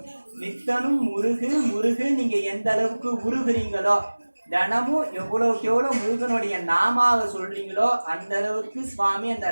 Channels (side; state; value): both; inverted; correlation -1.00